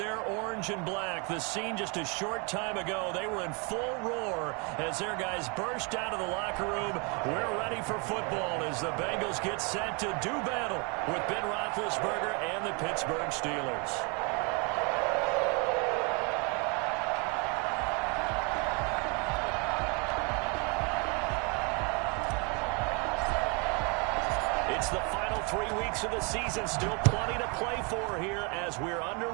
orange and black. The scene just a short time ago, they were in full roar as their guys burst out of the locker room. We're ready for football as the Bengals get set to do battle with Ben Roethlisberger and the Pittsburgh Steelers. It's the final 3 weeks of the season. Still plenty to play for here as we're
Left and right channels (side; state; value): left; quieter; 32.5 dB